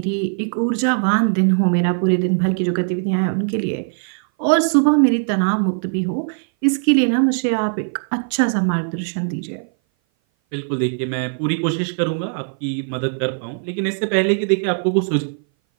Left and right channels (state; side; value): silent; left; 59 dB below the other